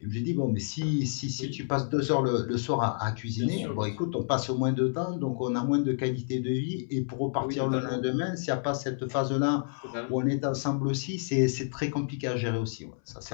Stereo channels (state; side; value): silent; right; 58 dB below the other